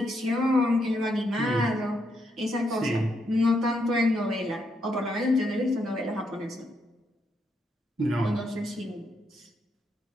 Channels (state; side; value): normal; both; correlation 0.78